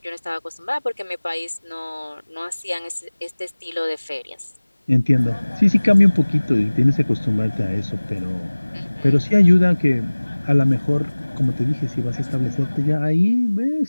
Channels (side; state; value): both; inverted; correlation -1.00